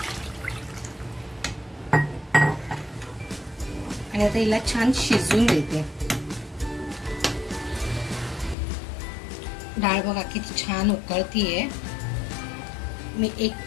आणि आता हिला छान शिजवून देते। डाळ बघा किती छान उकळतीये। मी 1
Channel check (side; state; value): right; drops out; at 8.6 s